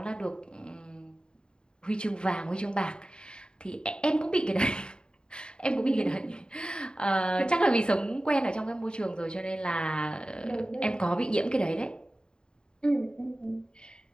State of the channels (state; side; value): late; right; 0.049 ms